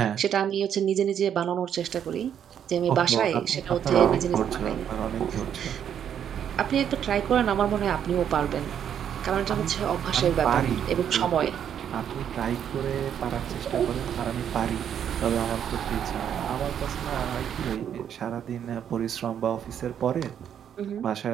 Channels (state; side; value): quieter; left; 9.0 dB